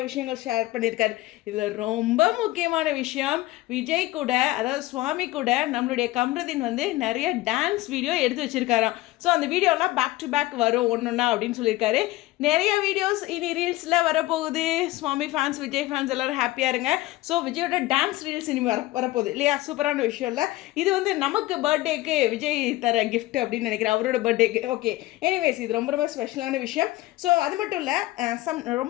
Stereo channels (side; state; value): right; quieter; 17.9 dB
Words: விஷயங்கள் ஷேர் பண்ணியிருக்காரு. இதில் ரொம்ப முக்கியமான விஷயம், விஜய் கூட, அதாவது சுவாமி கூட நம்மளுடைய கம்ருதீன் வந்து நிறைய டான்ஸ் வீடியோ எடுத்து வச்சுருக்காராம். ஸோ அந்த வீடியோலாம் பேக் டு பேக் வரும் ஒன்றுன்னா அப்படின்னு சொல்லியிருக்காரு. நிறைய வீடியோஸ் இனி ரீல்ஸில் வரப்போகுது. சுவாமி ஃபேன்ஸ், விஜய் ஃபேன்ஸ் எல்லோரும் ஹாப்பியாக இருங்க. ஸோ விஜயோட டான்ஸ் ரீல்ஸ் இனி வரப்போகுது இல்லையா? சூப்பரான விஷயம் இல்லை இது? வந்து நமக்கு பர்த்டேக்கு விஜய் தர கிஃப்ட் அப்படின்னு நினைக்கிறேன், அவரோட பர்த்டேக்கு. ஓகே, எனிவேஸ் இது ரொம்ப ஸ்பெஷலான விஷயம். ஸோ அது மட்டும் இல்லை,